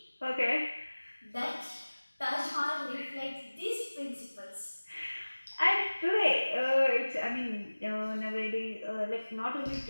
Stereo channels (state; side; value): inverted; both; correlation -1.00